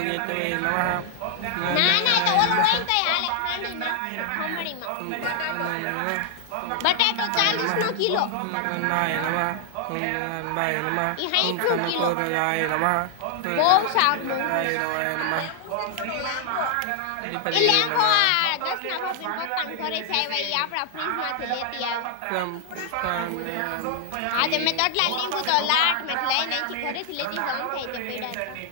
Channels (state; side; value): different; both; correlation 0.00